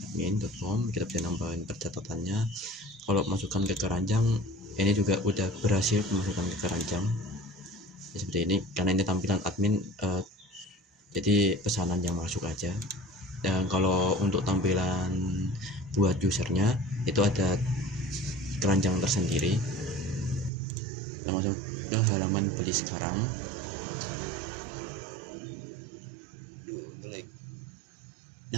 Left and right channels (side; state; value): left; drops out; at 20.5 s